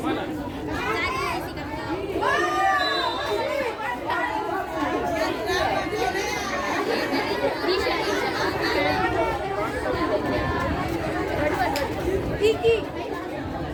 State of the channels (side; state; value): both; identical; correlation 1.00